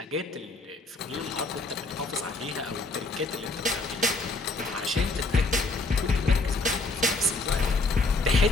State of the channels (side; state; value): right; quieter; 3.3 dB